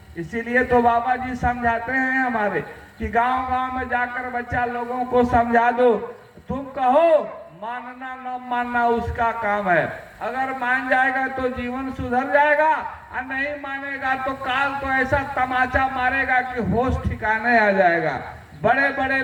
इसीलिए तो बाबा जी समझाते हैं हमारे कि गांव गांव में जाकर बच्चा लोगों को समझा दो, तुम कहो मानना न मानना उसका काम है, अगर मान जाएगा तो जीवन सुधर जाएगा, और नहीं मानेगा तो काल तो ऐसा तमाचा मारेगा कि होश ठिकाने आ जाएगा। बड़े बड़े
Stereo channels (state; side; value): identical; both; correlation 1.00